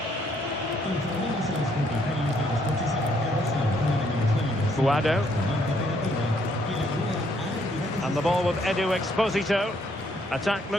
Guado. And the ball with Edu Exposito. Attack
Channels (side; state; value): both; normal; correlation 0.69